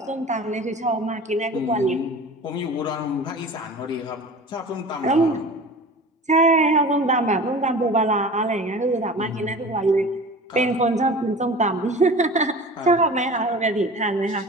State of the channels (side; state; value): both; normal; correlation 0.38